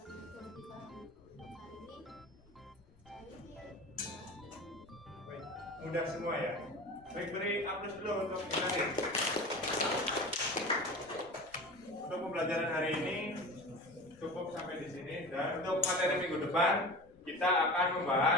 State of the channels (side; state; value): left; noise; rumble, 29 dB below the sound